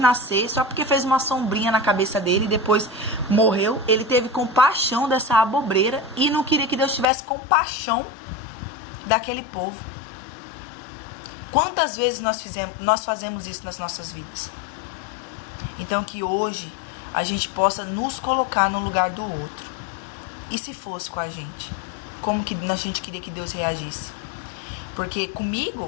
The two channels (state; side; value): drops out; right; at 7.1 s